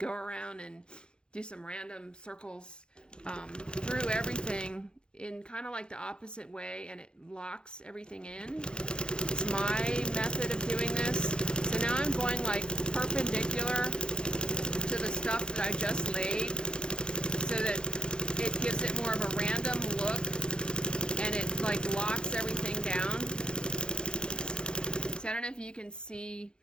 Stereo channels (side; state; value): right; late; 0.049 ms